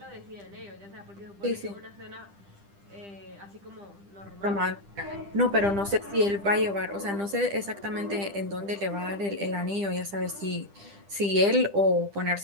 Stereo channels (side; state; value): left; late; 10 ms